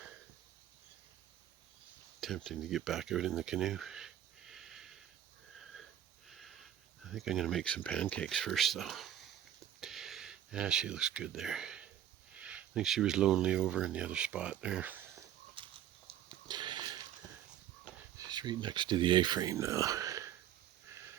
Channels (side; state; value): left; quieter; 11.1 dB